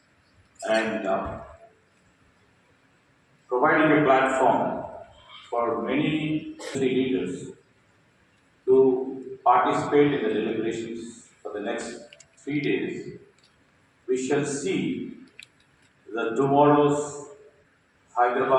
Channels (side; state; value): both; identical; correlation 1.00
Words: and providing a platform for many leaders to participate in the deliberations for the next 3 days. We shall see the tomorrow's